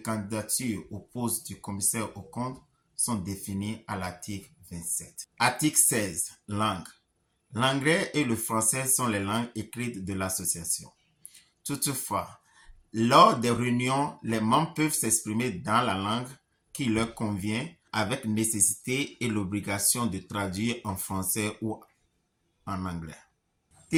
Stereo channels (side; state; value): both; identical; correlation 1.00